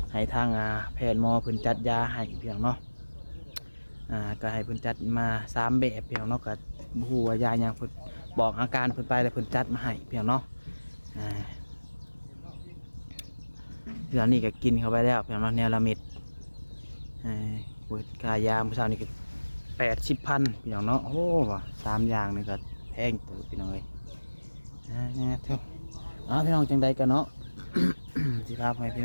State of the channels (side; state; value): both; inverted; correlation -1.00